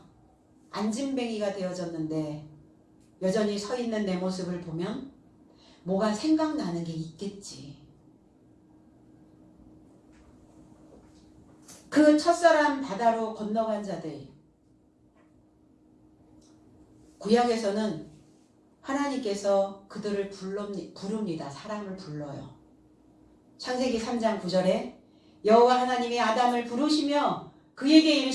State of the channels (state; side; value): identical; both; correlation 1.00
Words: 안진뱅이가 되어졌는데 여전히 서 있는 내 모습을 보면 뭐가 생각나는 게 있겠지. 그 첫사람 바다로 건너간 자들. 구약에서는 하나님께서 그들을 부릅니다. 사람을 불러요. 창세기 3장 9절에 여호와 하나님이 아담을 부르시며 그에게